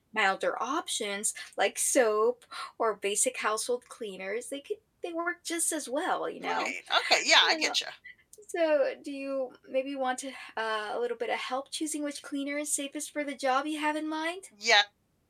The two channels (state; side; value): identical; both; correlation 1.00